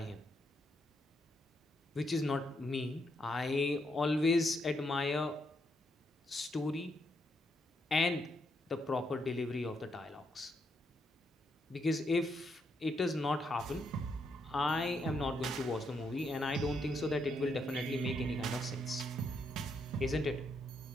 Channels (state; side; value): normal; both; correlation 0.78